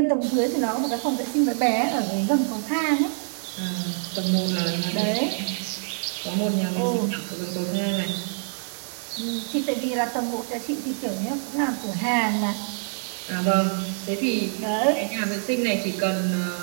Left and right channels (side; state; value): left; silent; digital silence